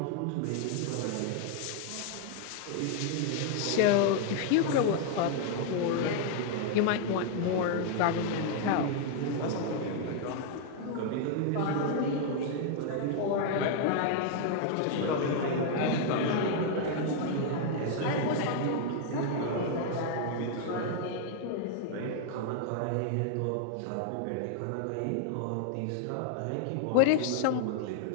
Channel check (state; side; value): different; both; correlation 0.00